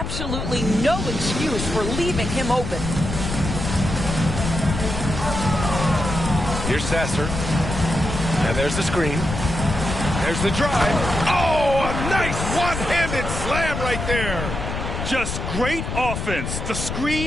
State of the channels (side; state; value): left; noise; rumble, 4 dB below the sound